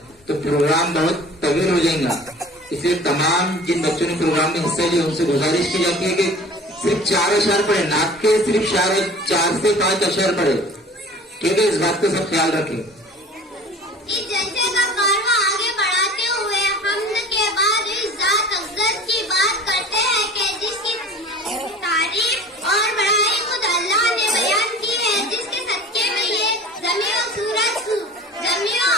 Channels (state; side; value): normal; both; correlation 0.43